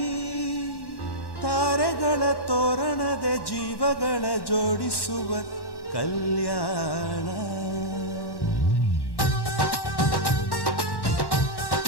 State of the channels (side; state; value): right; late; 1.1 ms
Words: ತಾರೆಗಳ ತೋರಣದ ಜೀವಗಳ ಜೋಡಿಸುವ ಕಲ್ಯಾಣ